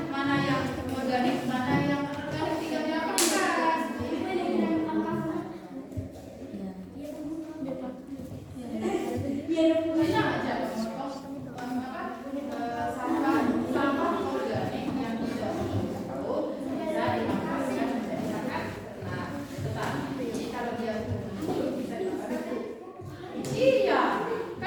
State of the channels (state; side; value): identical; both; correlation 1.00